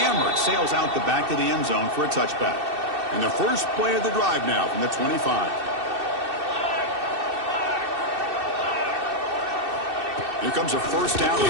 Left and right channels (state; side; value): late; left; 2.6 ms